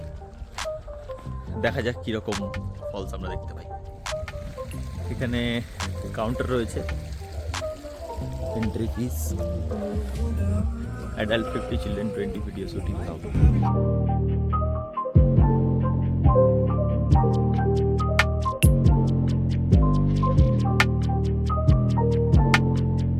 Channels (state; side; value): identical; both; correlation 1.00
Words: দেখা যাক কীরকম ফলস আমরা দেখতে পাই। এখানে কাউন্টার রয়েছে, entry fees, adult 50, children 20, video shooting হবে।